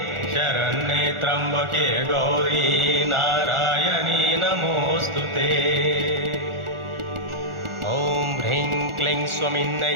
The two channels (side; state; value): left; late; 1.4 ms